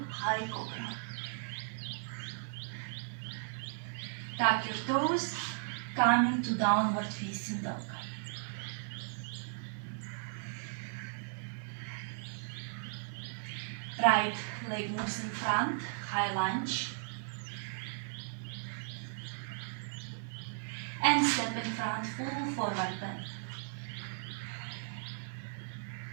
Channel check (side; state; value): left; silent; digital silence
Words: High Cobra. Tuck your toes, come into downward facing dog. Right leg moves in front, high lunge. And step in front, full forward bend.